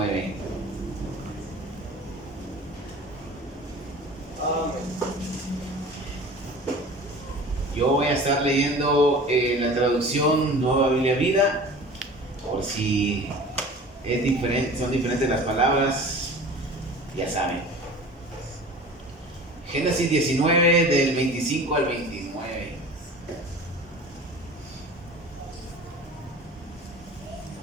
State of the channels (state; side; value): normal; both; correlation 0.40